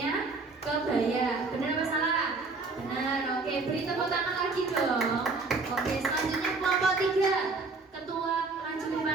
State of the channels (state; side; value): quieter; left; 3.8 dB